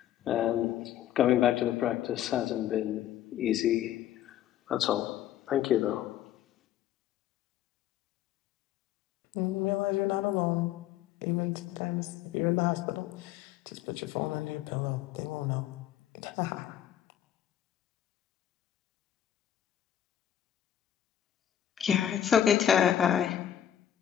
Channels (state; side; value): quieter; right; 11.1 dB